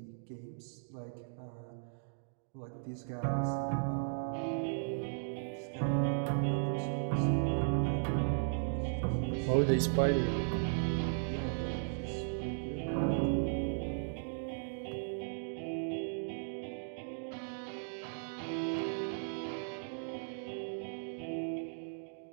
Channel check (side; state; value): left; silent; digital silence